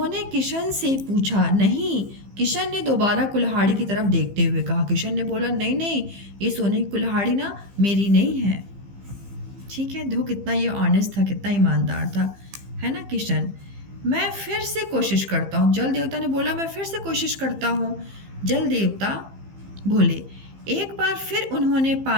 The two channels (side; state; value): left; late; 15 ms